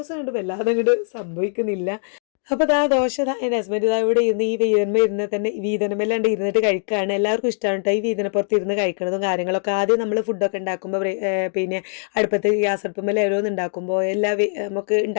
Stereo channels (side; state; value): right; silent; 62 dB below the other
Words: കണ്ട് വല്ലാതെ അങ്ങോട്ട് സംഭവിക്കുന്നില്ല. അപ്പോൾ ദോശ എൻ്റെ ഹസ്ബൻഡ് ഇവിടെ ഇരുന്ന് ഈ ഇരുന്ന് തന്നെ വീതനമെല്ലാണ്ട് ഇരുന്നിട്ട് കഴിക്കുകയാണ്. എല്ലാവർക്കും ഇഷ്ടമാണ് കേട്ടോ ഈ വീതനപ്പുറത്ത് ഇരുന്ന് കഴിക്കുന്നതും കാര്യങ്ങളൊക്കെ. ആദ്യം നമ്മൾ ഫുഡൊക്കെ ഉണ്ടാക്കുമ്പോൾ പിന്നെ അടുപ്പത്ത് ഗ്യാസ് അടുപ്പുമ്പോൾ ഓരോന്ന് ഉണ്ടാക്കുമ്പോൾ നമുക്ക്